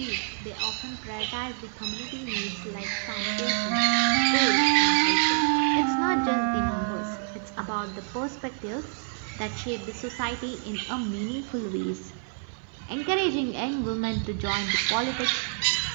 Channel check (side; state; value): left; silent; 57 dB below the other